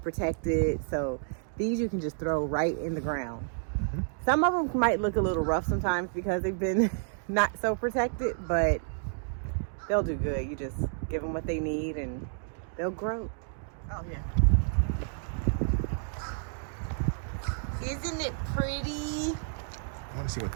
So these you can just throw right in the ground. Mm-hmm. Some of them might look a little rough sometimes because they've been not so protected, but they'll do good. You just give them what they need and they'll grow. Oh yeah. Isn't it pretty? I want to see what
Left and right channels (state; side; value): silent; left; digital silence